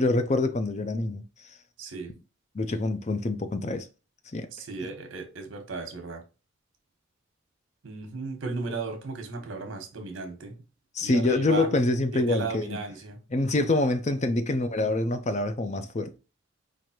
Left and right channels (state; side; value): normal; both; correlation 0.54